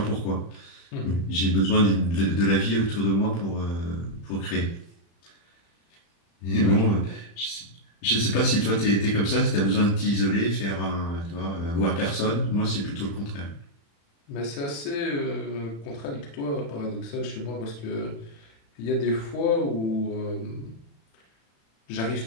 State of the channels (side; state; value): right; late; 35 ms